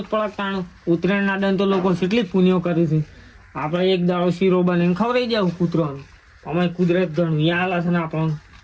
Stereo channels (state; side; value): identical; both; correlation 1.00